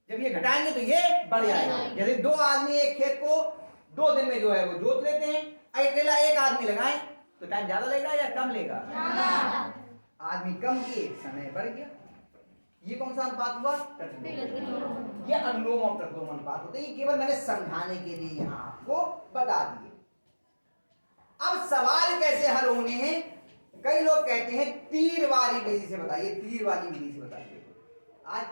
जब ये घटाएंगे तो ये बढ़ जाएगा। जैसे 2 आदमी एक खेत को 2 दिन में जो है वो जोत लेते हैं, अकेला एक आदमी लगाएं तो टाइम ज्यादा लगेगा या कम लेगा? आदमी कम किए, समय बढ़ गया। ये कौन सा अनुपात हुआ? प्रतिलोम। ये अनुलोम और प्रतिलोम अनुपात होते हैं। ये केवल मैंने समझाने के लिए यहाँ आपको बता दिए। अब सवाल कैसे हल होने हैं? कई लोग कहते हैं तीर वाली विधि से बताइए, तीर वाली विधि से बताइए। आज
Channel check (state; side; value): inverted; both; correlation -1.00